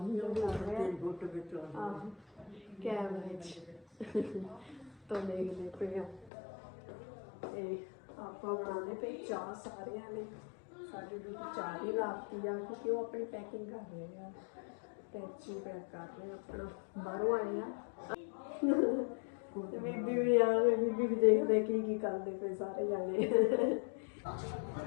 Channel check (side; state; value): right; drops out; at 6.3 s